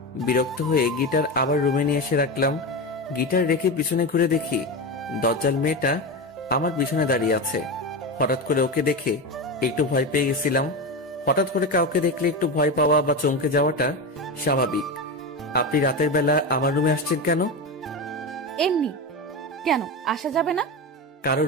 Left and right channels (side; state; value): both; normal; correlation 0.19